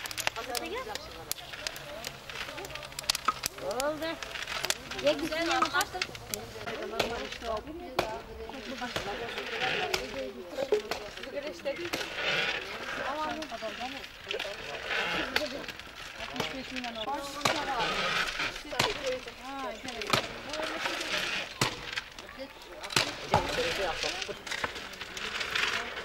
Oldu. Ye güzel yapmışsın.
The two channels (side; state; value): both; identical; correlation 1.00